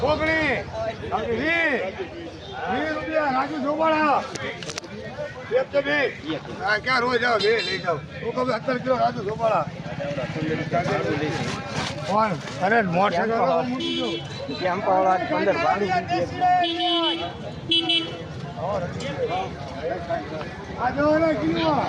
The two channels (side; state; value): both; identical; correlation 1.00